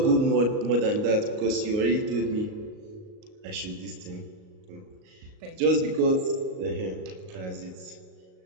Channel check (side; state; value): left; late; 38 ms